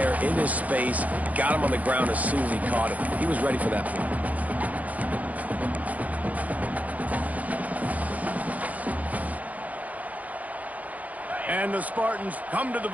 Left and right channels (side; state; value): left; late; 0.074 ms